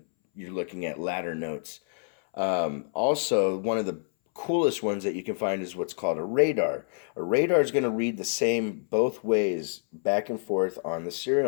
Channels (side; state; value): right; silent; 60 dB below the other